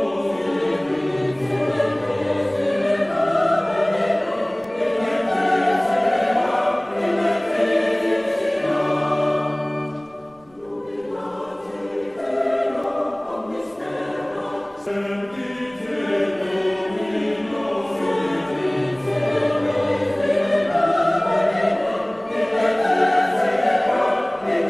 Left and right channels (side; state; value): right; noise; rumble, 29 dB below the sound